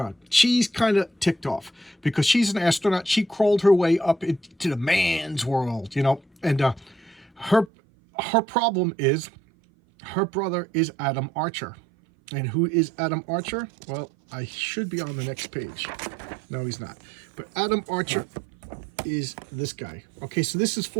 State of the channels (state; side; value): drops out; left; at 7.7 s